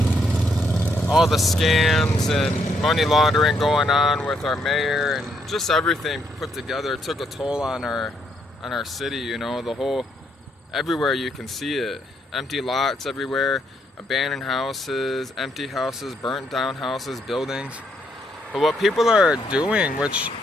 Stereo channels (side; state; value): both; normal; correlation 0.74